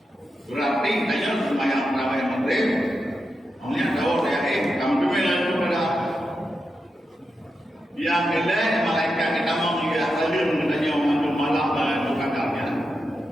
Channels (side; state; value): both; normal; correlation 0.88